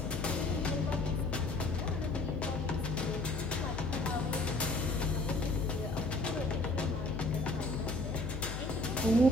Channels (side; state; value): left; noise; hum, 5 dB below the sound